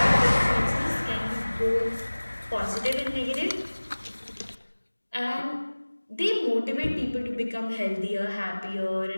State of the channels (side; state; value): both; inverted; correlation -1.00